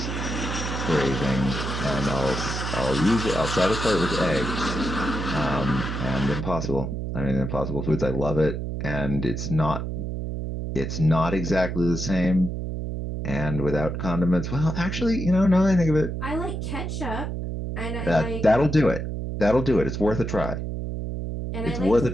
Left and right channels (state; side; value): noise; right; hum, 4 dB below the sound